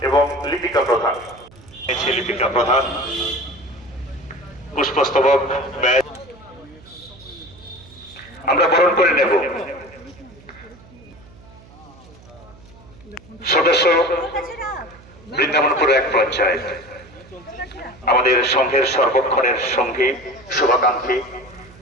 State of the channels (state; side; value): noise; right; hum, 23 dB below the sound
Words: এবং লিপিকা প্রধান। লিপিকা প্রধান পুষ্পস্তবক ব্যাজ আমরা বরণ করে নেব। সদস্য বৃন্দাবনপুর এক পঞ্চায়েত, আমাদের সংঘের সর্বক্ষণের সঙ্গী, শুভাকাঙ্ক্ষী,